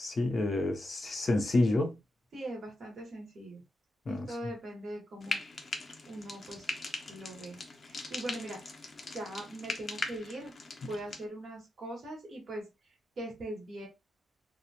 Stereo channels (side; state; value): both; normal; correlation 0.88